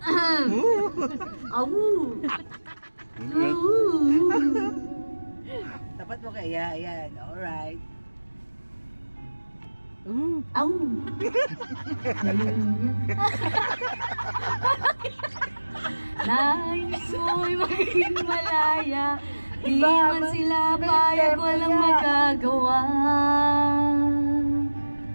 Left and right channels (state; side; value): inverted; both; correlation -1.00